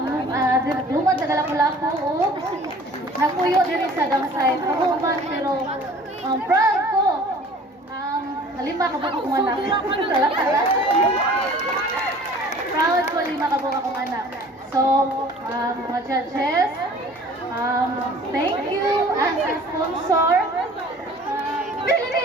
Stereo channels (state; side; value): normal; both; correlation 0.48